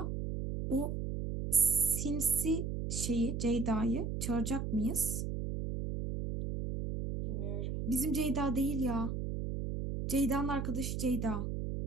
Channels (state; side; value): noise; right; hum, 3 dB below the sound